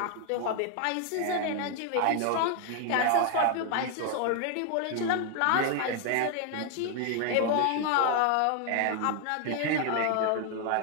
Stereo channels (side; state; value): both; different; correlation 0.00